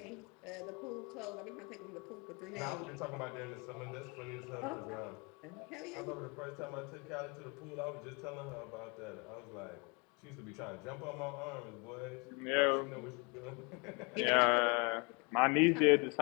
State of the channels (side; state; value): right; quieter; 30.5 dB